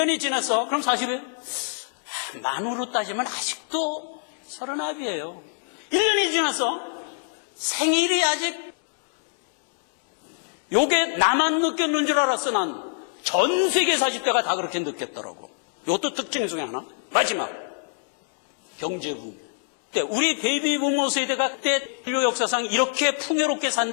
지났어. 그럼 40이에요? 만으로 따지면 아직도 39이에요. 1년이 지났어. 생일이 아직 요게 나만 느꼈는 줄 알았어. 난 전 세계 40대가 다 그렇게 느꼈더라고. 이것도 특징 중에 하나. 마지막 경제붐. 우리 베이비 부모 세대가 그때 인류 역사상 이렇게 풍요롭게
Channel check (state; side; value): silent; right; 60 dB below the other